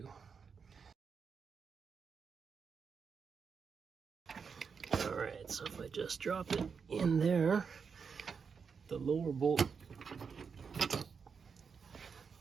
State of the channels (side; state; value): left; quieter; 5.9 dB